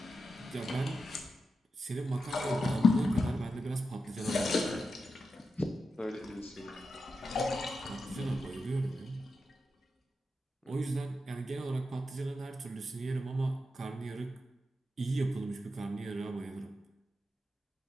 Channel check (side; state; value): both; normal; correlation 0.89